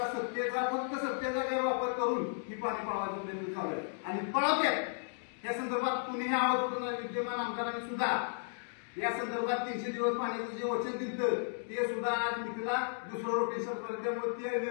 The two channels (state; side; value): silent; right; digital silence